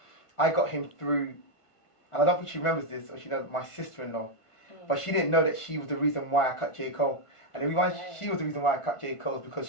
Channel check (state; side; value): late; right; 1.5 ms